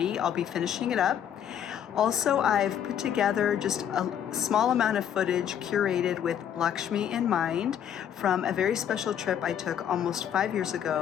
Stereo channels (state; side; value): quieter; right; 9.4 dB